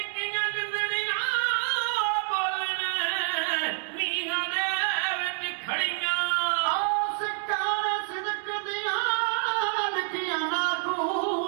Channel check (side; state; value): left; silent; 60 dB below the other